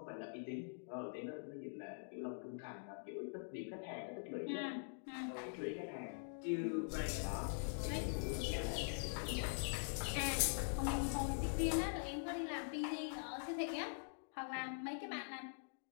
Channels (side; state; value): right; silent; digital silence